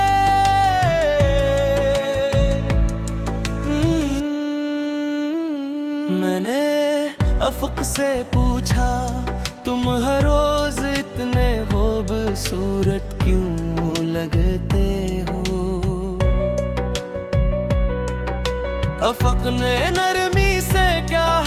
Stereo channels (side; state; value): both; identical; correlation 1.00